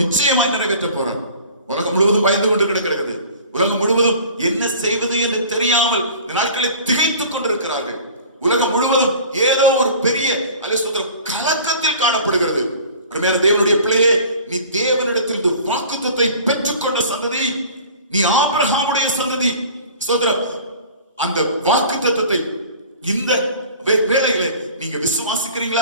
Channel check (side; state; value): both; inverted; correlation -0.44